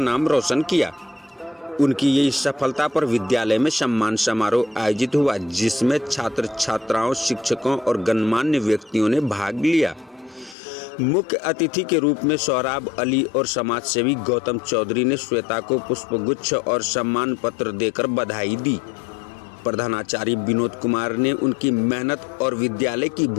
रोशन किया। उनकी ये सफलता पर विद्यालय में सम्मान समारोह आयोजित हुआ, जिसमें छात्र छात्राओं, शिक्षकों और गणमान्य व्यक्तियों ने भाग लिया। मुख्य अतिथि के रूप में सोहराब अली और समाज सेवी गौतम चौधरी ने श्वेता को पुष्पगुच्छ और सम्मान पत्र देकर बधाई दी। प्रधानाचार्य विनोद कुमार ने उनकी मेहनत और विद्यालय की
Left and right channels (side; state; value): right; drops out; at 10.6 s